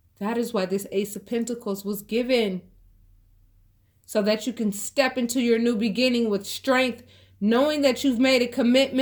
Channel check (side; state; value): both; identical; correlation 1.00